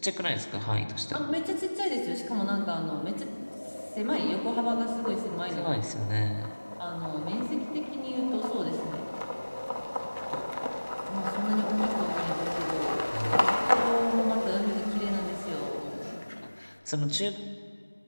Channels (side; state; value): both; inverted; correlation -1.00